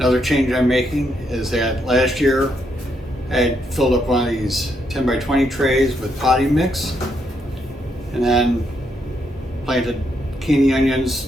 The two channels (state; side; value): normal; both; correlation 0.77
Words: change I'm making is that last year I had filled up one of these 10 by 20 trays with potting mix and then planted candy onions